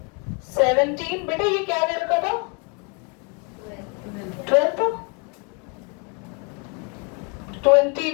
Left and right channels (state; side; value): quieter; right; 33.4 dB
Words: 17, बेटा ये क्या दे रखा था 12,